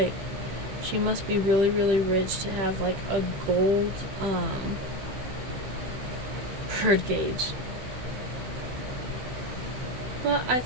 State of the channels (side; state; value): left; late; 15 ms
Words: she must be really, really rich to have like a gold bird gauge. But I